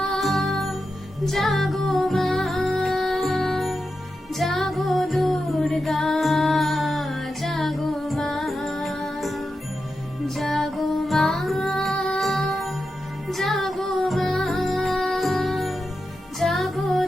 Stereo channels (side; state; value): both; normal; correlation 0.89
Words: জাগো মা, জাগো দুর্গা, জাগো মা, জাগো মা, জাগো মা, জাগো